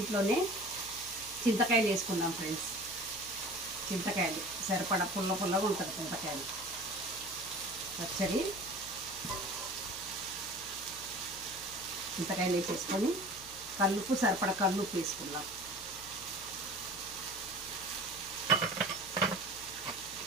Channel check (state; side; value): noise; left; hum, 20 dB below the sound